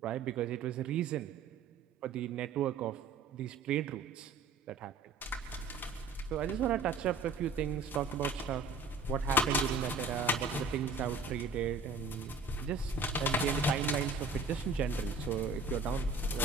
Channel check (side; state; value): left; quieter; 3.8 dB